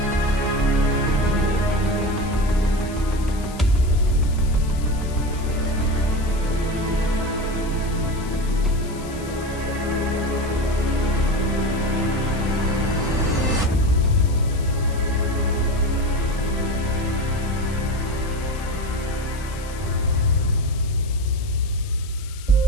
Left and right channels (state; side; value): noise; left; hiss, 18 dB below the sound